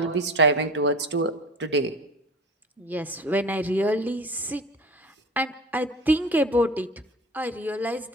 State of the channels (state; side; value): normal; both; correlation 0.36